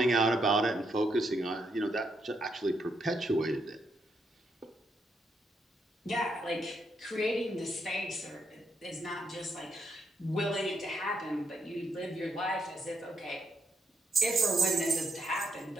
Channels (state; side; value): normal; both; correlation 0.78